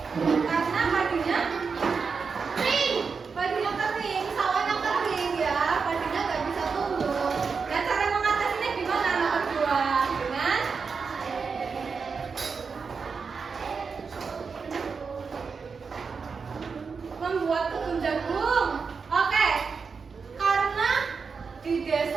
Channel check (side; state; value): left; quieter; 5.3 dB